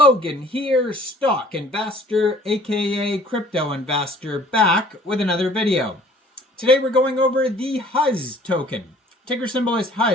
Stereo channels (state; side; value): normal; both; correlation 0.54